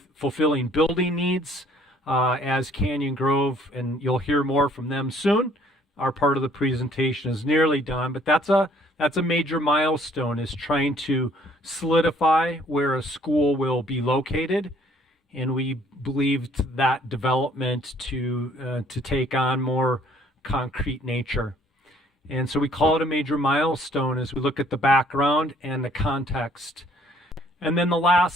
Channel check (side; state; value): both; normal; correlation 0.60